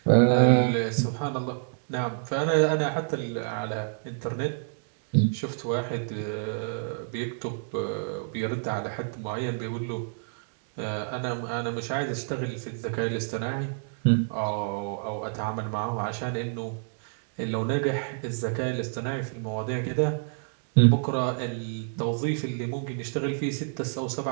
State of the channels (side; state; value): left; silent; digital silence